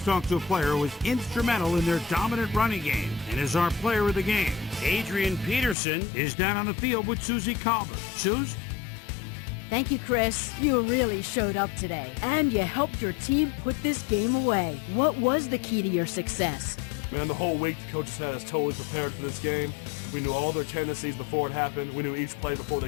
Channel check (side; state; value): right; drops out; at 5.8 s